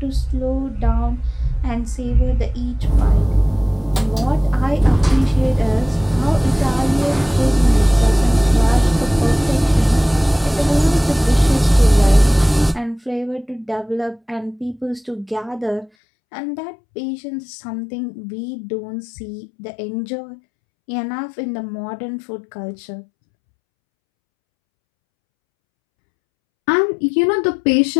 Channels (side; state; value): right; drops out; at 15.9 s